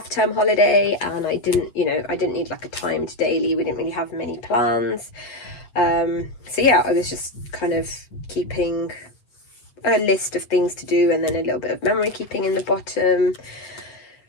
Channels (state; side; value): late; right; 8.5 ms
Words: holiday and I didn't need like a timed daily. We didn't really have many plans. So yeah, I was just kind of keeping a list of things to do and then a little bit of memory keeping in the bottom.